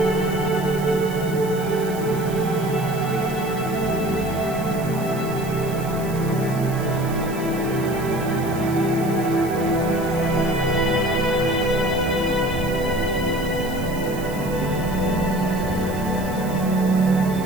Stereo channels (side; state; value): right; noise; hiss, 16 dB below the sound